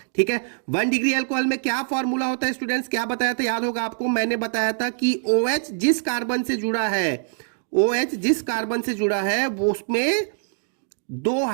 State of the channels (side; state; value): left; silent; digital silence